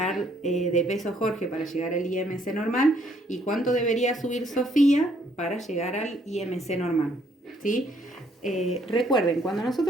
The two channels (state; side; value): normal; both; correlation 0.67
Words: de peso Jorge para llegar al IMC normal? ¿Y cuánto debería subir Sofía para llegar al IMC normal? ¿Sí? Recuerden, cuando